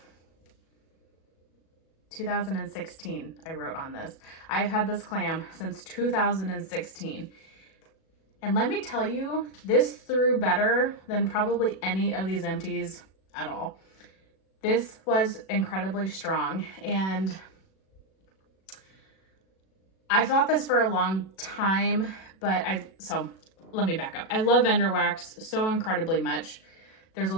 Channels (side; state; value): right; late; 37 ms